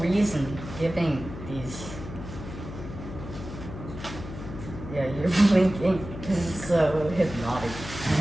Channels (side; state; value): left; noise; hum, 10 dB below the sound